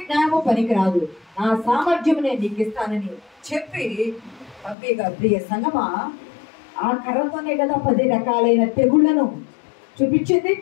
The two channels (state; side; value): drops out; right; at 4.8 s